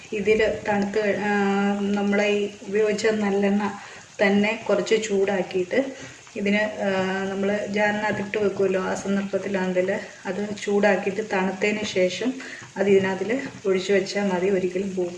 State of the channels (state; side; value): identical; both; correlation 1.00